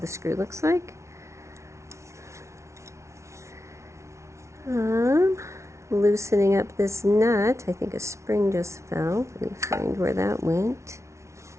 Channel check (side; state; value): left; late; 0.13 ms